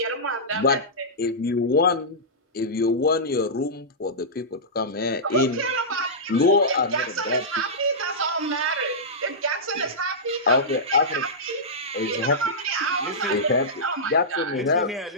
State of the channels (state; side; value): normal; both; correlation -0.14